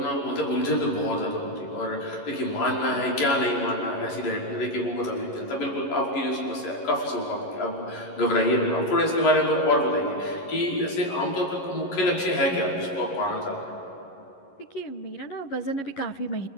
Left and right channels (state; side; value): late; right; 11 ms